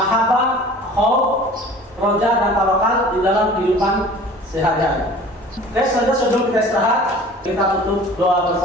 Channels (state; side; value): normal; both; correlation 0.45